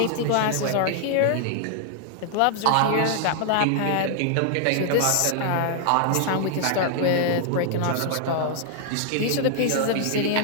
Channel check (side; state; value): both; different; correlation 0.00